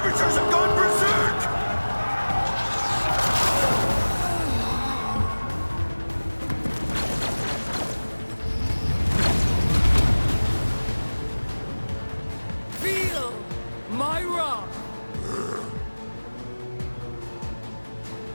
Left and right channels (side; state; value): both; inverted; correlation -1.00